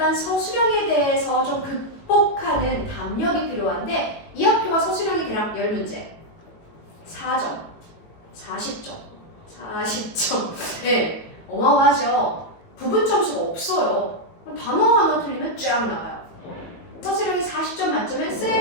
서술형에 대해서 좀 극복하는 담력이 필요한데 이 학교가 서술형이 대략 10문제 4점, 40점, 40점. 네, 어마어마하죠. 부분 점수가 없어요. 단어 하나 틀리면 쫙 나가요. 서술형이 40점 만점에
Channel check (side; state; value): right; late; 18 ms